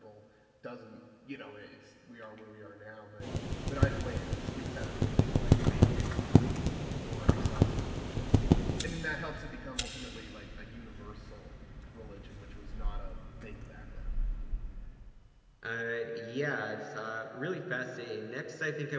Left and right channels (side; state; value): both; identical; correlation 1.00